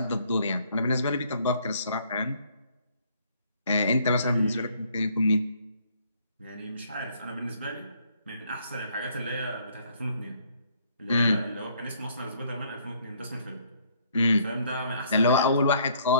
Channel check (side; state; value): both; inverted; correlation -0.64